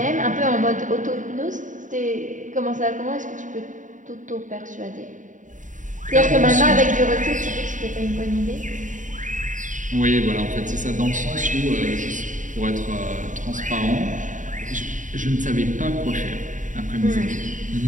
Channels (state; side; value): late; left; 0.37 ms